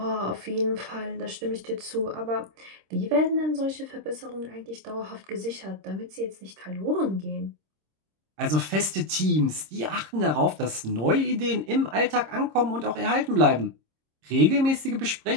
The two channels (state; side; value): late; left; 26 ms